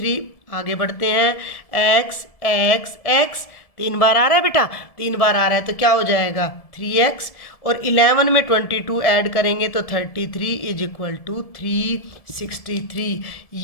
आगे बढ़ते हैं, x 3 बार आ रहा है बेटा, 3 बार आ रहा है तो क्या हो जाएगा 3x, और 11 में 22 ऐड करेंगे तो 33 इज इक्वल टू 363।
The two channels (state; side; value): late; right; 1.7 ms